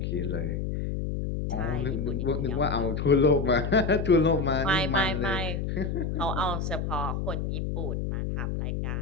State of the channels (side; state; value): left; noise; hum, 2 dB below the sound